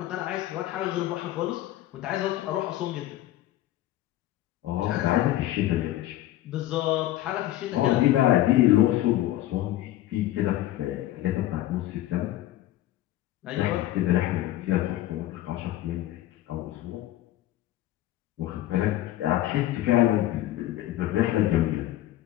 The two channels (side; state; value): right; quieter; 14.6 dB